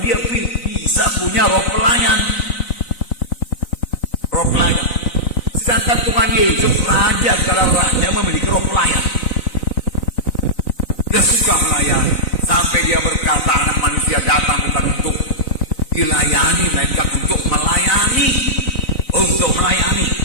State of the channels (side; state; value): right; late; 4.0 ms